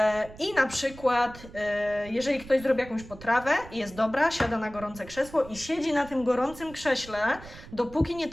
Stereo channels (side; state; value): right; noise; rumble, 17 dB below the sound